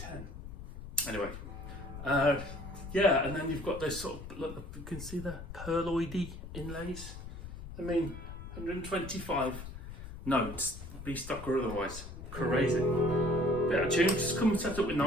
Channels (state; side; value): noise; left; rumble, 11 dB below the sound